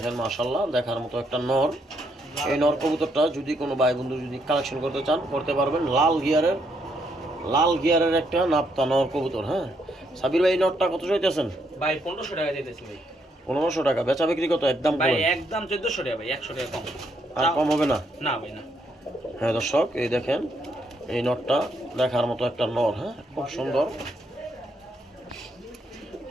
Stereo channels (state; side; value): normal; both; correlation 0.75